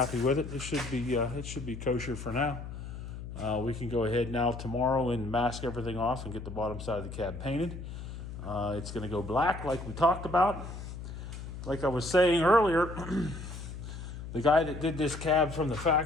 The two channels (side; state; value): left; noise; hum, 9 dB below the sound